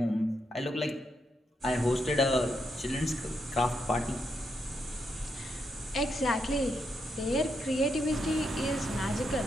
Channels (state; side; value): normal; both; correlation 0.81